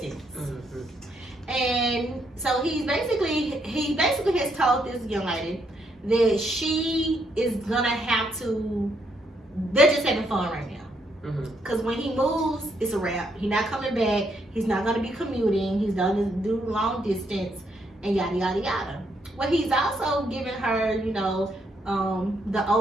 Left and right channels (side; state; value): both; normal; correlation 0.75